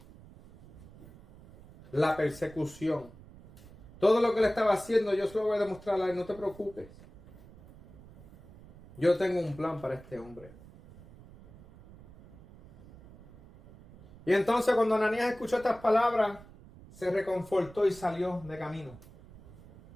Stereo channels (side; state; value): right; noise; rumble, 21 dB below the sound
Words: la persecución. Todo lo que le estaba haciendo yo se lo voy a demostrar a él, no te preocupes. Yo tengo un plan para este hombre. Y entonces cuando Ananías escuchó estas palabras, se reconfortó y salió de camino.